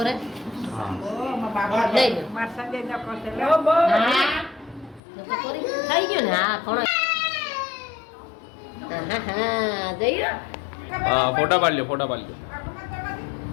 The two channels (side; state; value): right; drops out; at 5.0 s